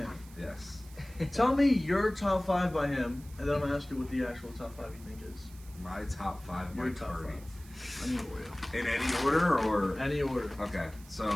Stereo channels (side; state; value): right; noise; hiss, 22 dB below the sound